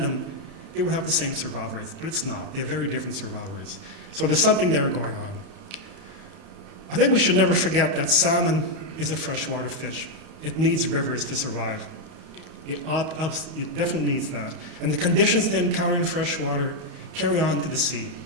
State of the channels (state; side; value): late; left; 31 ms